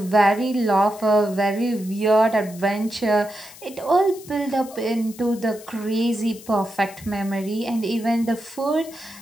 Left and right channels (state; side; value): noise; left; hiss, 19 dB below the sound